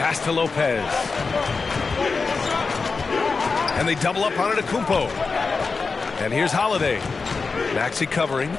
to Lopez. And they double up on Antetokounmpo. And here's Holiday. Maxey covering.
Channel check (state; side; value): quieter; right; 4.5 dB